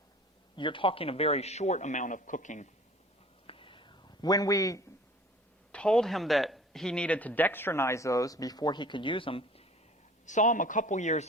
you're talking a very short amount of cooking. When we told him that he needed to dextrinize those before he could use them, saw him a couple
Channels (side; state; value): both; normal; correlation 0.46